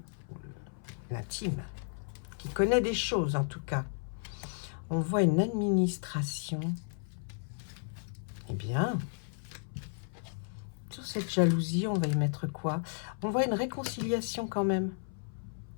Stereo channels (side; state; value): right; silent; 55 dB below the other